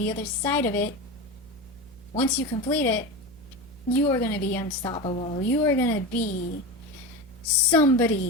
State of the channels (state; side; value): noise; right; hum, 26 dB below the sound